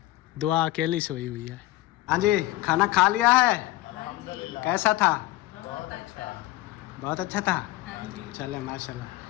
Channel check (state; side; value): quieter; right; 17.3 dB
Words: दुआ अकेली सोई हुई है। हाँ जी, खाना खा लिया है? कैसा था? बहुत अच्छा था। चले